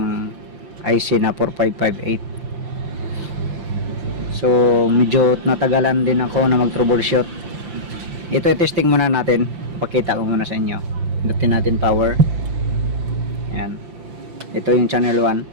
IC na 4558. So medyo natagalan din ako na mag troubleshoot. Ito i-testing muna natin. Pakita ko muna sa inyo. Pindutin natin power. Ayan. Ito yung channel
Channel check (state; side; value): late; left; 5.8 ms